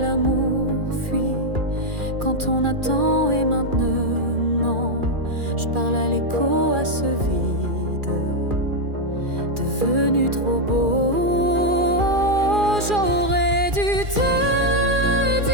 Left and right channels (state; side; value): late; left; 2.4 ms